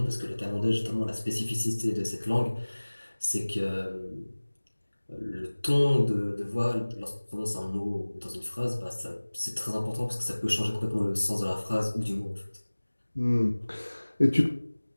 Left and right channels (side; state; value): both; inverted; correlation -1.00